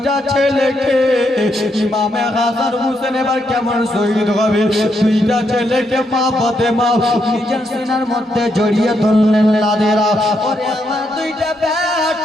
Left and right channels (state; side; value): normal; both; correlation 0.78